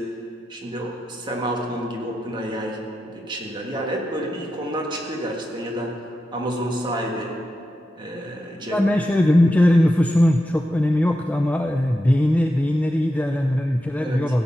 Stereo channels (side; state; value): both; normal; correlation 0.89